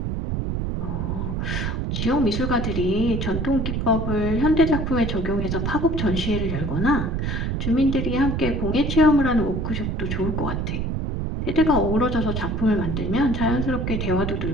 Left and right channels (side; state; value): right; noise; rumble, 1 dB below the sound